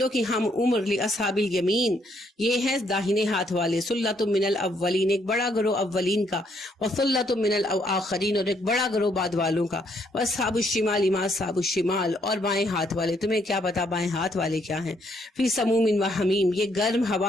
کی ہم عمر لاصحاب الیمین، یہ ہے داہنے ہاتھ والے، سلۃ من الاولین ایک بڑا گروہ اولین کا، وسلۃ من الاخرین اور ایک بڑا گروہ بعد والوں کا، واصحاب الشمال ما اصحاب الشمال اور بائیں ہاتھ والے، تمہیں کیا پتا بائیں ہاتھ والے کیا ہیں، فی سموم و حمیم یہ گرم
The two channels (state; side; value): normal; both; correlation 0.71